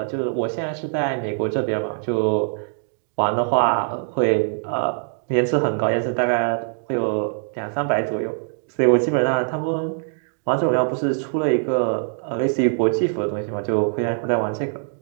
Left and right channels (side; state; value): left; silent; digital silence